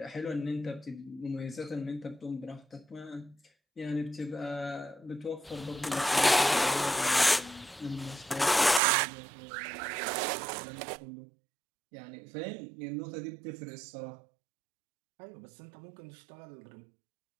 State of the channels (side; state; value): left; drops out; at 8.8 s